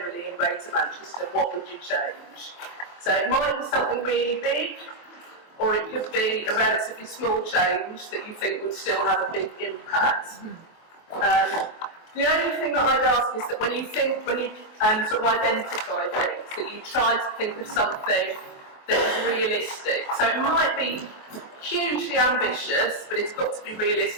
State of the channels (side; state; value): right; late; 23 ms